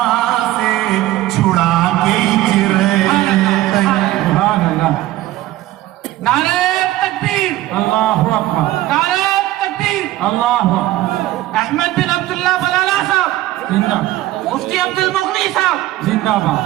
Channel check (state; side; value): quieter; left; 15.7 dB